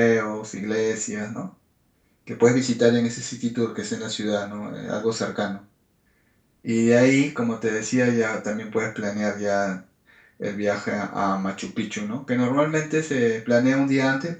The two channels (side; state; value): both; identical; correlation 1.00